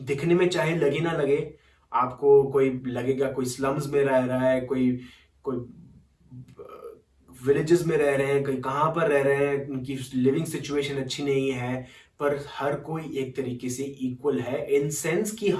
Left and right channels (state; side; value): identical; both; correlation 1.00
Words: में चाहे लगे ना लगे, आपको कोई लगेगा कोई स्लम्स में रह रहा है, कोई कोई विलेजेस में रह रहे हैं, कहीं कहाँ पर रह रहे हैं, उनकी लिविंग सिचुएशन अच्छी नहीं है, पर हर कोई एक तरीके से इक्वल है इन सेंस कि